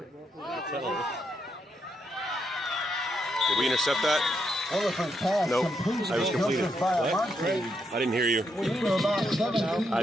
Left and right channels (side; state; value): both; normal; correlation 0.80